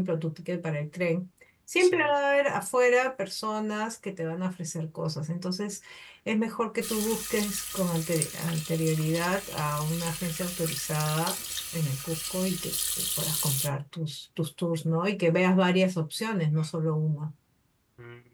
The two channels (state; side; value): identical; both; correlation 1.00